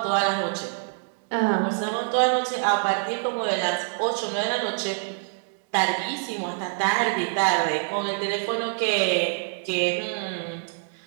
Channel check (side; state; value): left; silent; digital silence